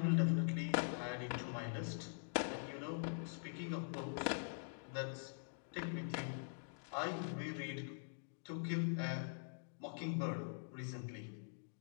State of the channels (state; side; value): silent; right; digital silence